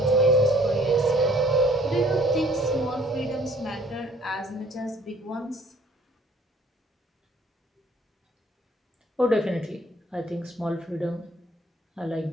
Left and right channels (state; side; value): normal; both; correlation 0.58